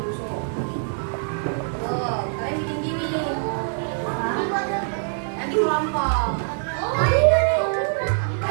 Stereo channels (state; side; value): silent; left; 56 dB below the other